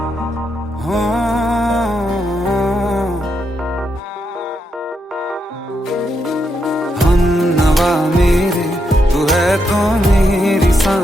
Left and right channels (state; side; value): normal; both; correlation 0.81